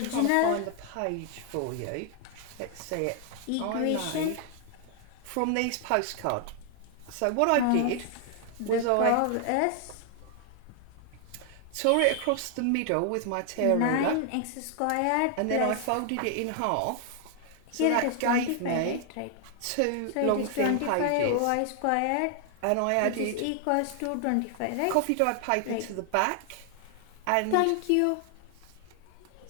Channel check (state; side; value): different; both; correlation 0.00